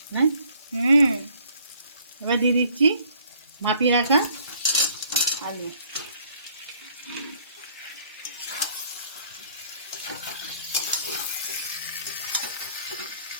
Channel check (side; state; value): both; inverted; correlation -0.61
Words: হ্যাঁ। এবার দিয়ে দিচ্ছি মাপিয়ে রাখা আলু।